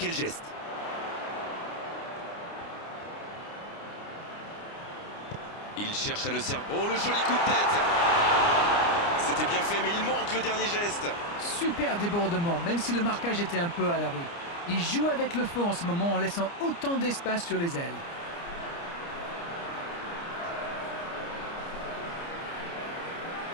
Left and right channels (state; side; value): late; right; 29 ms